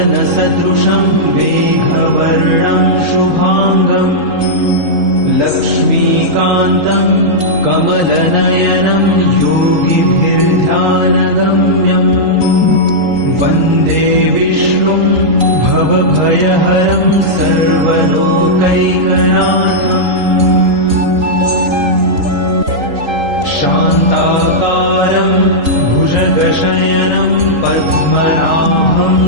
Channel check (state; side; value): late; left; 3.8 ms